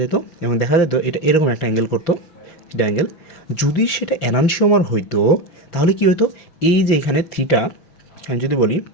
যেত, এবং দেখা যেত এটা এরকম একটা অ্যাঙ্গেল করতো, এটা অ্যাঙ্গেল। যদি সেটা এনানসিওমার হইতো তাহলে কী হতো, এই যে এখানে থিটা, আমি যদি বলি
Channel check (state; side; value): late; right; 6.2 ms